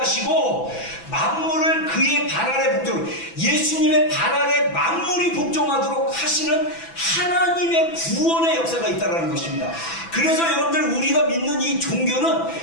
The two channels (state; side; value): late; right; 6.0 ms